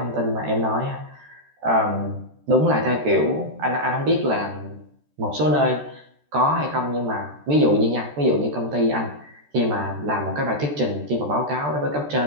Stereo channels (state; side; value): late; left; 14 ms